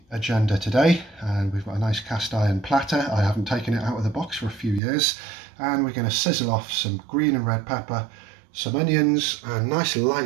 agenda today, and we've got a nice cast iron platter. I haven't taken it out of the box for a few years, and we're going to sizzle off some green and red pepper, some onions, and nice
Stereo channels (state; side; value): drops out; left; at 4.8 s